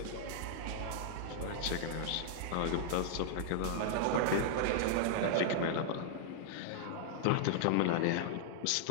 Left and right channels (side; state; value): both; different; correlation -0.01